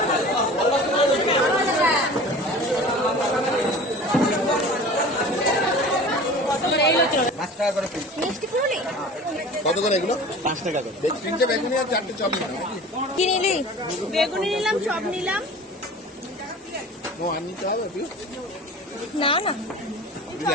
পাঁচ টাকা করে পিস। মিষ্টি পুরুলি কত করে এগুলো? 5 টাকা করে। তিনটে বেগুনি আর চারটে চপ নিলাম। কি নিলি? বেগুনি নিলাম, চপ নিলাম। ও আর নিতে হবে একটু? না না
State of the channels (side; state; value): both; normal; correlation 0.40